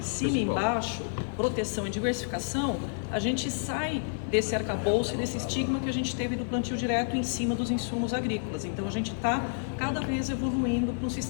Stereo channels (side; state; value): right; silent; digital silence